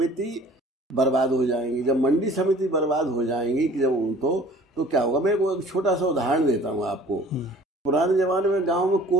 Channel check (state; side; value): normal; both; correlation 0.49